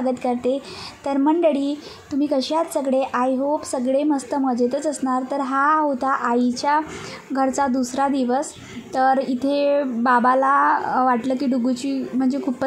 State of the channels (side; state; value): both; identical; correlation 1.00